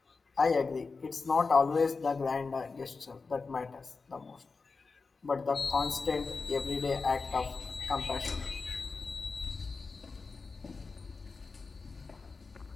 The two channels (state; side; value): quieter; right; 4.4 dB